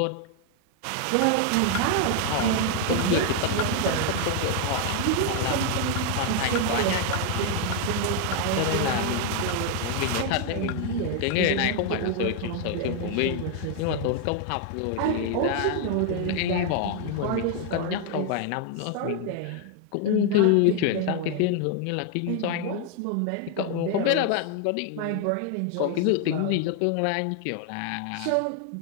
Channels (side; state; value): both; different; correlation 0.00